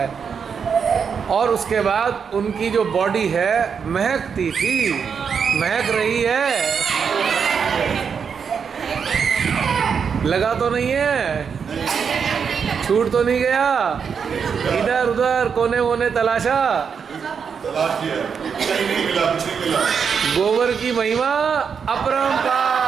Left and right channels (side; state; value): left; quieter; 6.5 dB